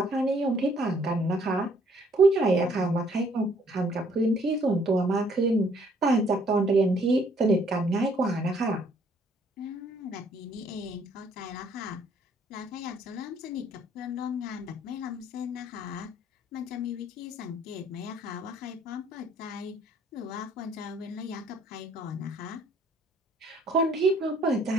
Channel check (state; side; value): normal; both; correlation 0.63